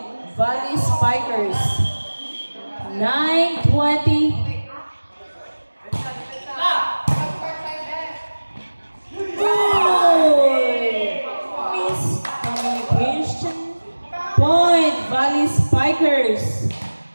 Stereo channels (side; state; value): both; inverted; correlation -1.00